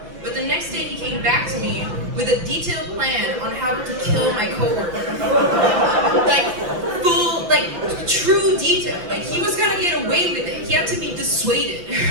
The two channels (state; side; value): late; left; 5.6 ms